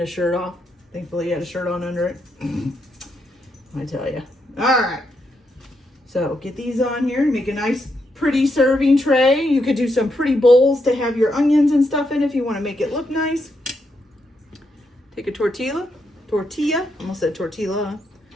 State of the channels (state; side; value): normal; both; correlation 0.80